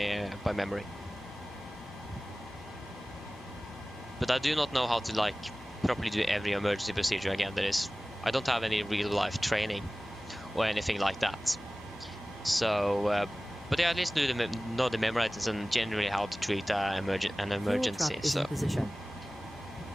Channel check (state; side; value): normal; both; correlation 0.98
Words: memory. But I do not know how to, like, properly do every emergency procedure again. I don't have any real life training or anything like that. So, but yeah, at least know the memory items and generally how to treat an emergency. Fuel truck is in So, position.